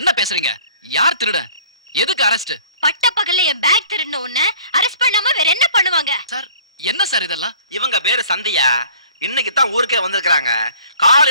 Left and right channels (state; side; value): inverted; both; correlation -0.52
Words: என்ன பேசுறீங்க? யார் திருட? எதுக்கு அரெஸ்ட்? பட்ட பகல்ல என் பேக் திருடின உன்னை அரெஸ்ட் பண்ணாம வேற என்ன பண்ணுவாங்க? சார் என்ன சார் இதெல்லாம்? இவங்க பேரு சந்தியா. இன்னைக்கு தான் ஊருக்கே வந்திருக்காங்க.